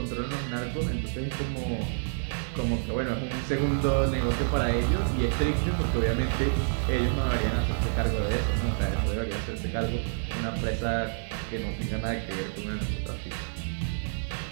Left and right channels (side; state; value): left; silent; digital silence